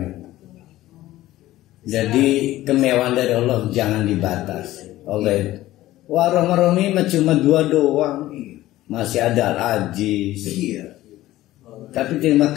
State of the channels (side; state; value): right; quieter; 15.7 dB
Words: Jadi kemewahan dari Allah jangan dibatasi. Allah wah Rahman-Rahim cuma 2 doang. Masih ada Al-Aziz. Iya. Tapi terima